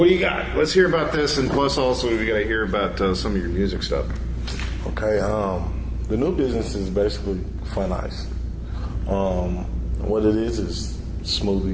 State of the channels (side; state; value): both; identical; correlation 1.00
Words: do you got? Let's hear about this, and plus also we got to hear about some of your music stuff. Okay, the new business is basically Fun Ice. What it is